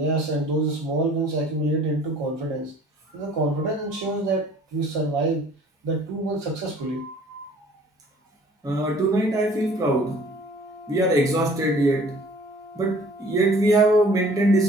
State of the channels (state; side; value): normal; both; correlation 0.52